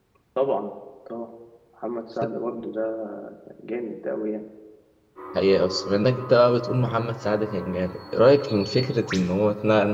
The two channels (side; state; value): both; identical; correlation 1.00